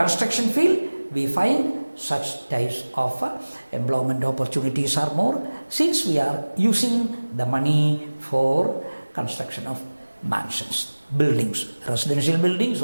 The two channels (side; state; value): both; inverted; correlation -1.00